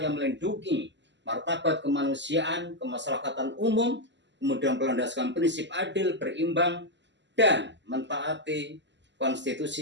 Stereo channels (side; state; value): left; late; 0.52 ms